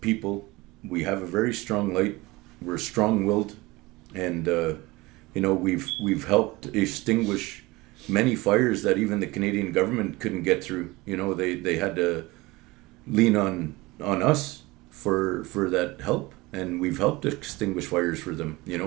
people. We have a very strong light. We're strong-willed, and we've helped extinguish many fires that even the Canadian government couldn't get through. They had to lean on us for that help, and we've helped extinguish fires for them.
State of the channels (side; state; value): left; quieter; 21.7 dB